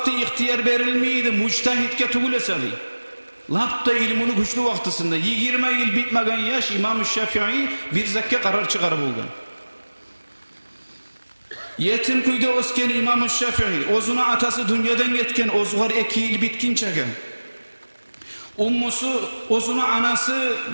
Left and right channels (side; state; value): both; inverted; correlation -1.00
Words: ihtiyar verilmeydi, muctahitke tugulesa dedi. Lapta ilmini güçlü vaktisinde 20 yıl bitmegen yaş İmam-ı Şafii bir zakka karar çıkarıp olgan. Yetim kuyda osken İmam-ı Şafii, ozuna atası dünyadan getken ozugar 2 yıl bitkinçege. Ummusu, ozunu anası